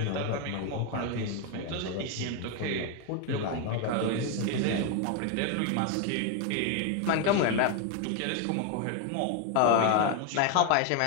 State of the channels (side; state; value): both; different; correlation 0.01